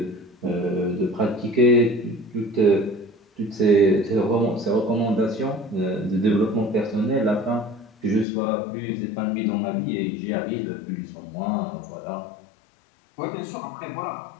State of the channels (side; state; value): right; drops out; at 8.2 s